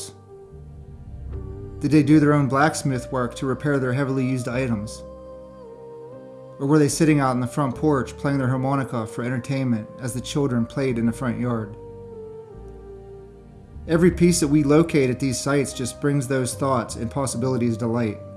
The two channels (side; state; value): both; identical; correlation 1.00